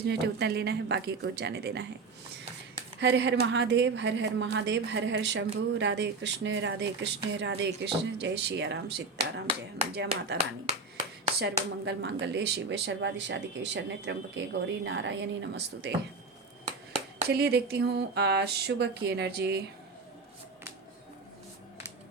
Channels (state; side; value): quieter; left; 4.1 dB